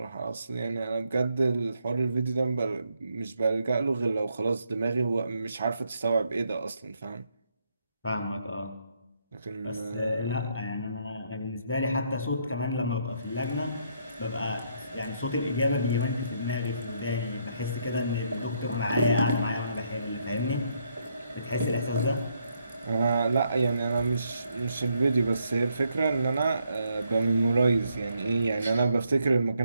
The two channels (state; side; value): inverted; both; correlation -0.74